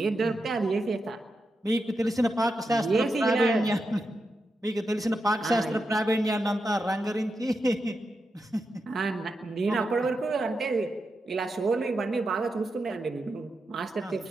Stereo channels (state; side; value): normal; both; correlation 0.87